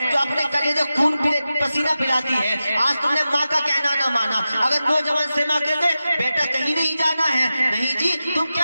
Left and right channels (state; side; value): inverted; both; correlation -0.93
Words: جو اپنے کلیجے خون پسینہ پلاتی ہے آج تم نے ماں کا کہنا نہ مانا اگر نوجوان سے ماں کہتے بیٹا کہیں نہیں جانا ہے نہیں جی تم